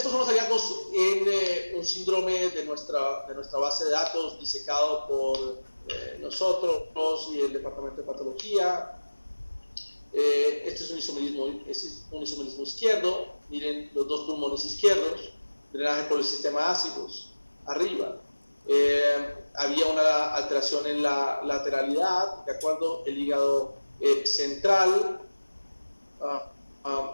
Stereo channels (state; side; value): inverted; both; correlation -1.00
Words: son los hallazgos en un síndrome de nuestra base de datos disecado por nosotros y el departamento de patología. Este es un isomerismo izquierdo. Miren los dos pulmones izquierdos, drenaje por el sistema ácidos, arriba. Había una alteración en la lateralidad, ¿de acuerdo? El hígado central,